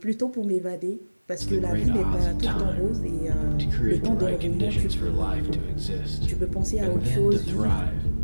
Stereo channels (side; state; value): both; inverted; correlation -1.00